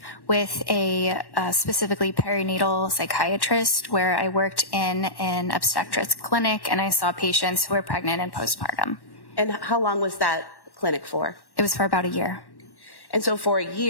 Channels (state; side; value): late; right; 1.1 ms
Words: with a specifically perinatal psychiatrist where I worked in an obstetrics clinic and I saw patients who were pregnant and postpartum. And how long was that clinic for? It was for about a year. And so for a